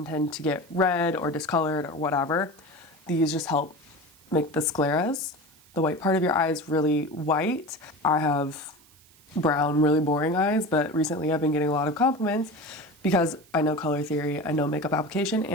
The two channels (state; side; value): noise; right; hiss, 28 dB below the sound